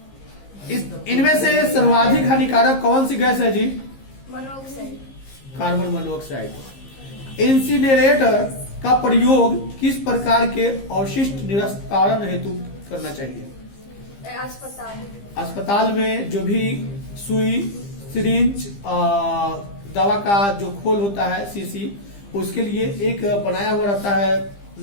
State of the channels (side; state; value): right; late; 15 ms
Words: इनमें से सर्वाधिक हानिकारक कौन सी गैस है जी? मोनोऑक्साइड। Carbon monoxide. इंसिनरेटर का प्रयोग किस प्रकार के अवशिष्ट निस्तारण हेतु करना चाहिए? अस्पताल में जो भी सुई, सिरिंज, दवा का जो खोल होता है शीशी, उसके लिए एक बनाया हुआ रहता है